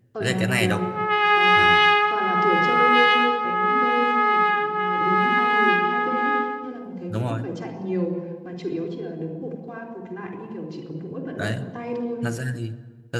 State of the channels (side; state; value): both; identical; correlation 1.00